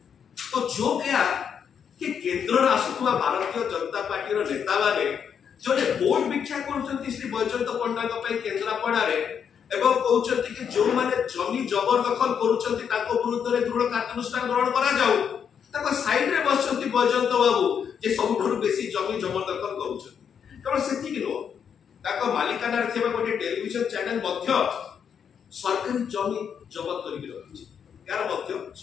तो जो क्या कि केंद्र आसुवा भारतीय जनता पार्टी रो नेता माने जोने वोट भिक्षा करछंती श्री बैजयंत पट्टनायक पई केंद्रापड़ा रे एवं कहउछंती कि जो माने जमी जबरदखल करूछंती ताको विरुद्ध रे दृढ़ कार्यानुष्ठान ग्रहण करा जाऊ। ताको साइड रे बसछंती बैजयंत बाबू जे सबठुर बेसी जमी जबरदखल करूछंती। केवल सेति कि नो ताको मालिकाना रे थिबा गोटे टेलीविजन चैनल मध्य सरकारी जमी जबत करि रखिछि। यार मध्य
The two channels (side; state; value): right; quieter; 7.6 dB